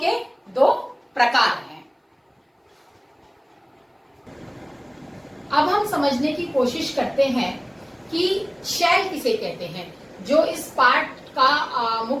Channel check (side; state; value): both; identical; correlation 1.00